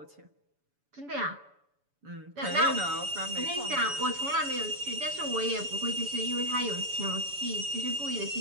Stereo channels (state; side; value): late; left; 7.0 ms